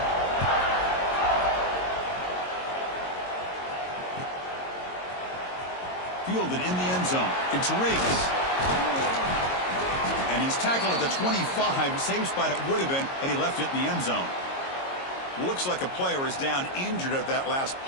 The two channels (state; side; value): late; right; 22 ms